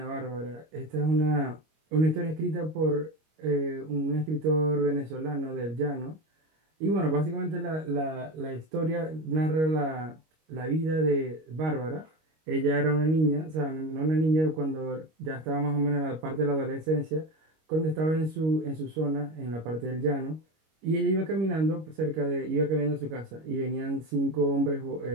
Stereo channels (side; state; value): left; late; 25 ms